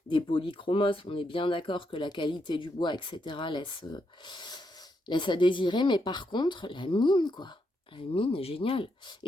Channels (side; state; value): both; normal; correlation 0.80